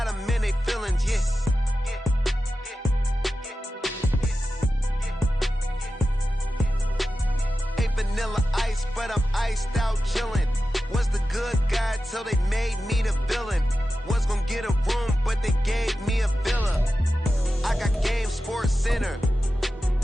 them in they feelings, yeah. Ain't vanilla ice, but I'm iced out chillin'. Was the good guy till they made me the villain. Was gonna get a room, but they gave me a villa. I got game Sports Center.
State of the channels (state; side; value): normal; both; correlation 0.93